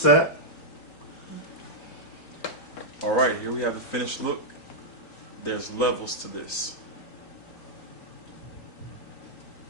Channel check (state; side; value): late; right; 3.9 ms